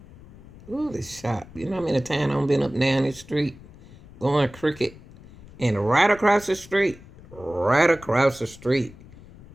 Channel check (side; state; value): left; noise; rumble, 20 dB below the sound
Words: Ooh, this shop. You know how many times I've been up down the street going cricket, and right across the street